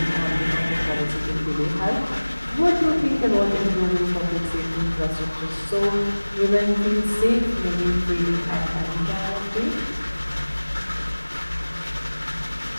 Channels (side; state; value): both; inverted; correlation -1.00